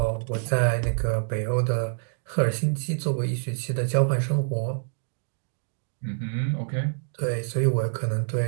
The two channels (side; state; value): left; silent; digital silence